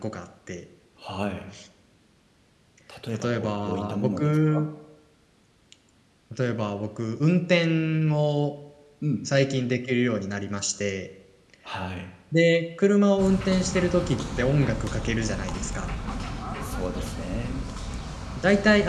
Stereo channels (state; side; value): identical; both; correlation 1.00